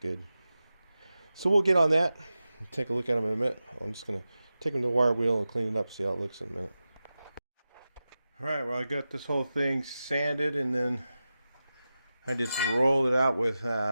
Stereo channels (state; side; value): inverted; both; correlation -0.93